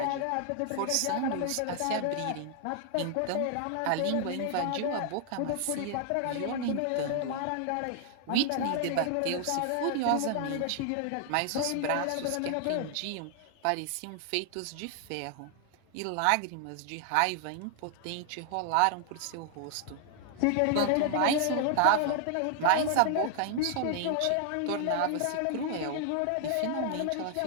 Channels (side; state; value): both; different; correlation 0.00